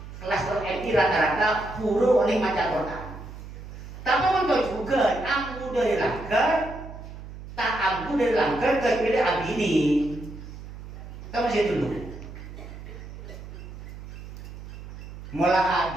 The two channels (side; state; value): right; noise; hum, 13 dB below the sound